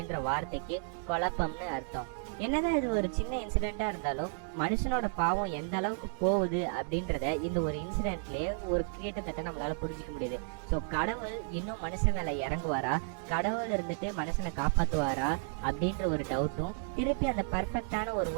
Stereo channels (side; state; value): left; silent; digital silence